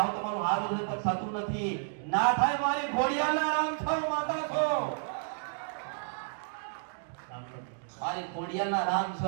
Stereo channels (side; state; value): left; silent; digital silence